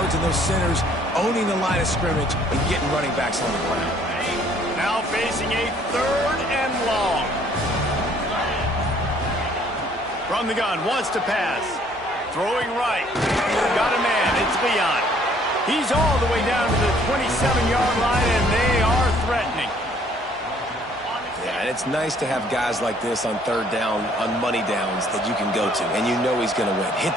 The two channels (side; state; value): both; normal; correlation 0.61